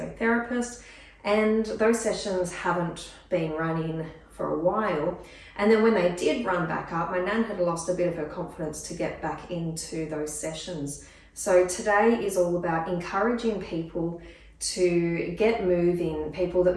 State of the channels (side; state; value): both; identical; correlation 1.00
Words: and those sessions haven't been running for a while. And then when they did run back up, my Nan had lost a bit of her confidence to get back into those sessions. So today is all about encouraging people to get moving, people that